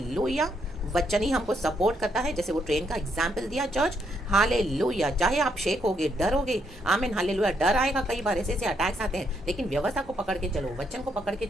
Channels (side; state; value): both; normal; correlation 0.76